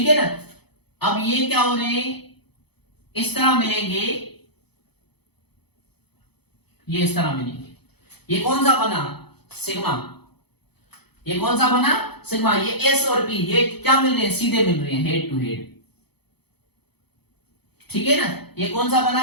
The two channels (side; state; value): right; late; 0.98 ms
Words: है ना। अब ये क्या हो रहे हैं, इस तरह मिलेंगे, ये इस तरह मिलेंगे। ये कौन सा बना, सिग्मा। ये कौन सा बना, सिग्मा। ये एस और पी ये क्या मिल रहे हैं, सीधे मिल रहे हैं, हेड टू हेड, ठीक है ना। ये कौन सा बना